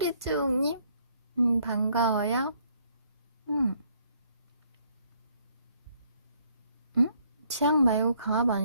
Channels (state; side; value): inverted; both; correlation -0.67